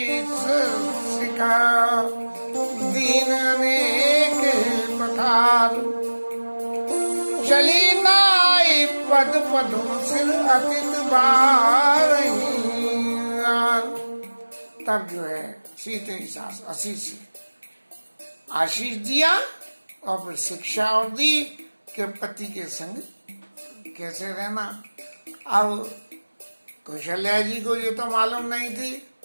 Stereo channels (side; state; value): both; inverted; correlation -1.00